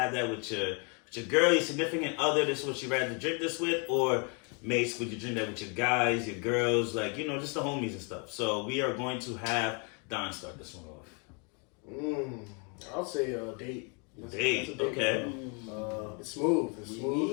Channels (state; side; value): quieter; right; 35.5 dB